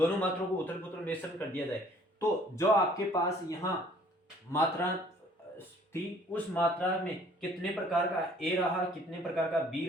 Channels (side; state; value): both; normal; correlation 0.57